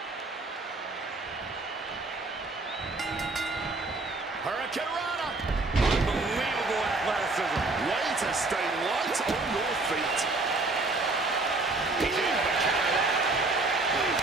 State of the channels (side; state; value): left; quieter; 3.3 dB